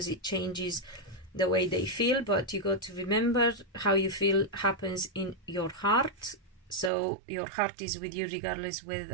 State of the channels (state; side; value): drops out; left; at 6.9 s